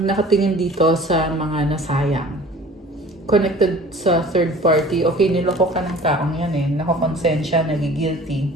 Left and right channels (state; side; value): normal; both; correlation 0.46